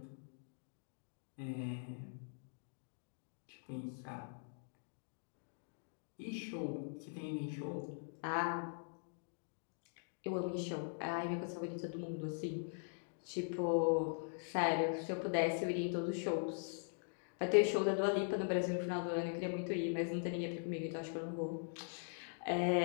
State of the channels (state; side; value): silent; right; digital silence